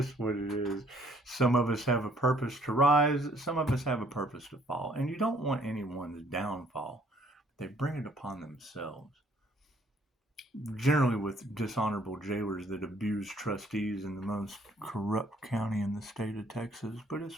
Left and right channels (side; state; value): both; normal; correlation 0.62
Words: what it is. Some of us have a purpose to rise. Some of us have a purpose to fall. And you don't want anyone's downfall. They bring it upon themselves. Generally with dishonorable jailers that abuse trustees in the most corrupt county in the state of Texas. But